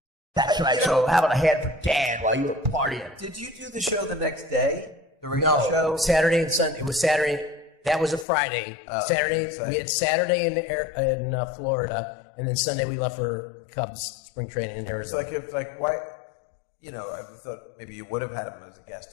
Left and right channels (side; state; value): right; drops out; at 8.2 s